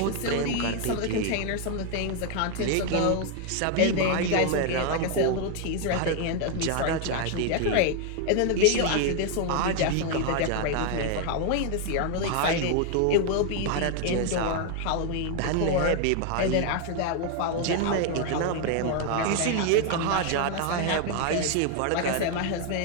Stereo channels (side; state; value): both; different; correlation 0.00